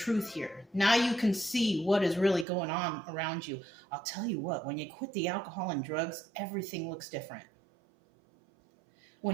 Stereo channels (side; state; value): left; drops out; at 2.5 s